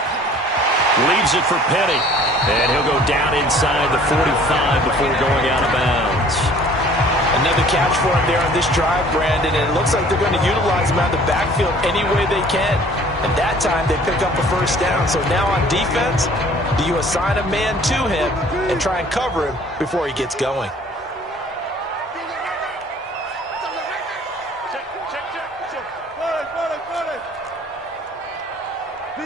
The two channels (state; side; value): normal; both; correlation 0.52